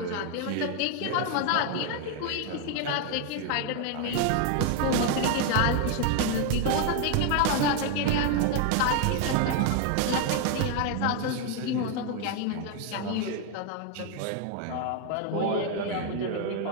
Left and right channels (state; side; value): different; both; correlation 0.01